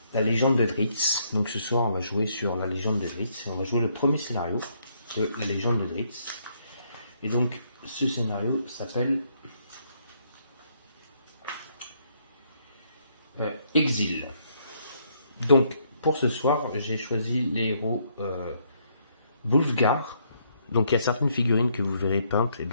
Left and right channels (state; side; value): inverted; both; correlation -0.71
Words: la légende de Drizzt. Donc ce soir on va jouer sur la légende de Drizzt et on va jouer le premier scénario de la légende de Drizzt. Et donc ce scénario s'appelle Exil. Donc pour ce soir j'ai choisi les héros Wulfgar. Donc il y a certaines figurines que vous verrez peintes et